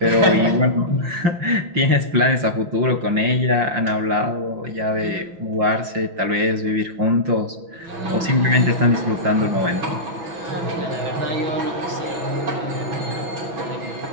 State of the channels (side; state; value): left; late; 5.7 ms